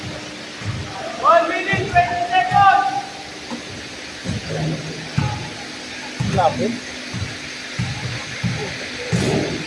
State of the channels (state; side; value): identical; both; correlation 1.00